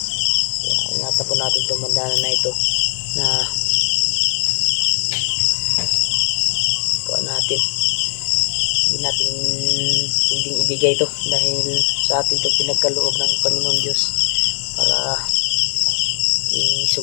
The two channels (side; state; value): right; silent; 63 dB below the other